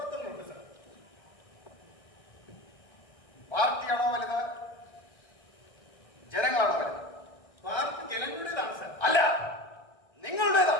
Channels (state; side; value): late; right; 1.6 ms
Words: സാർ. പാർട്ടിയാണോ വലുത്, ജനങ്ങളാണോ വലുത്? പാർട്ടി ജനങ്ങളുടേതാണ് സാർ. അല്ല,